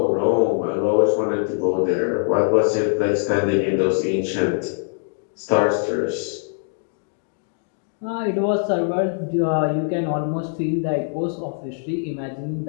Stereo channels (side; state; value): right; silent; 64 dB below the other